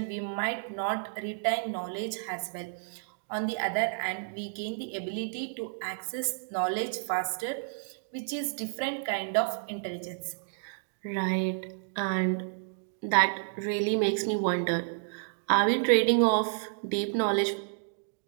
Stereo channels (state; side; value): silent; left; digital silence